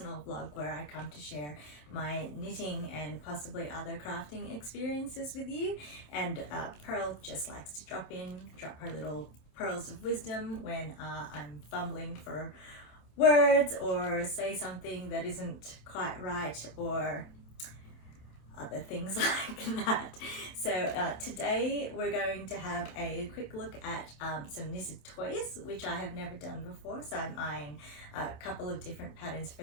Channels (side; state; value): right; late; 27 ms